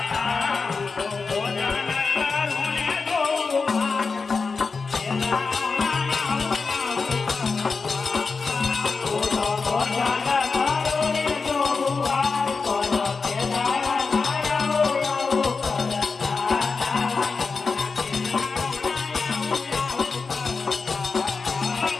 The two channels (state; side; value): quieter; right; 4.6 dB